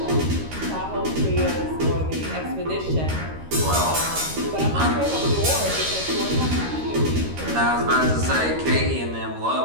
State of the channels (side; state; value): left; late; 13 ms